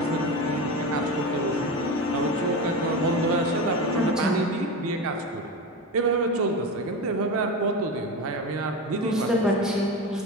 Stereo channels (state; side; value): normal; both; correlation 0.23